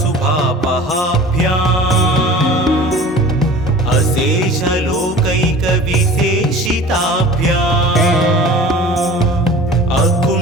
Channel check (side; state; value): both; normal; correlation 0.42